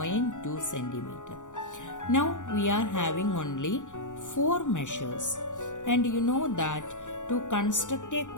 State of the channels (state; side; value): late; right; 0.86 ms